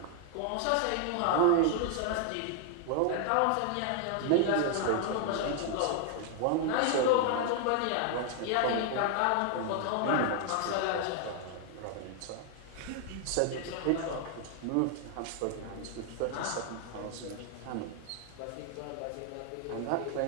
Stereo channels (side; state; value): both; different; correlation 0.00